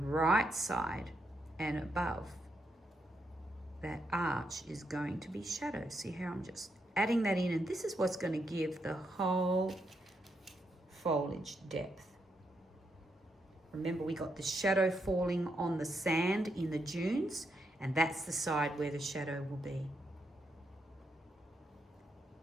side and above that arch is going to be shadow. See how I'm just adding that in, and this is what's going to give the whole foliage depth. Remember, we got the shadow falling on the sand in the dunes, and that's the side where the shadow will be.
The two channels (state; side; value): normal; both; correlation 0.80